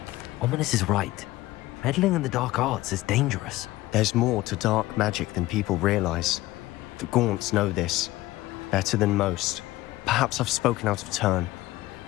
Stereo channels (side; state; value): right; quieter; 17.7 dB